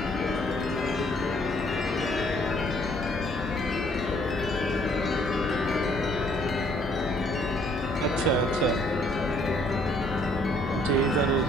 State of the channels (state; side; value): normal; both; correlation 0.64